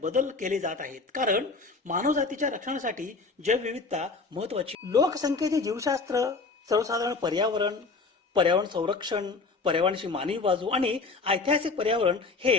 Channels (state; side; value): quieter; right; 4.1 dB